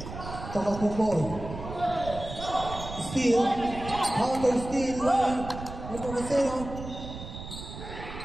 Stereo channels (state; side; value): noise; right; rumble, 10 dB below the sound